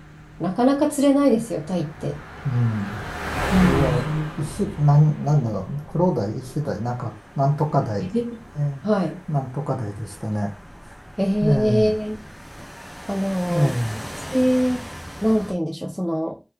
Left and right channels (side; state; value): both; identical; correlation 1.00